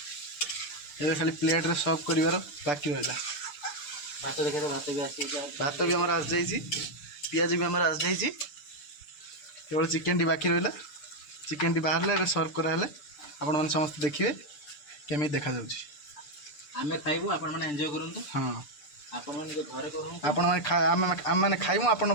एबे खाली प्लेट रे सर्व करिवार बाकी रहला भात देखे तो भात भी आसी भात भी हमारा आस जाइए पियाज भी हमारा आस जाइए केवल चिकेन टी बाकी रहा चिकेन टी बाहर सर्व कराले आपण मैंने समस्त देखिए केमी देखा जाउची आमे खाइबु आपण माने एन्जॉय करंतु हां आपण माने घरे करू आपण माने आम माने खाइमु आपण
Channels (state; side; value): late; right; 6.8 ms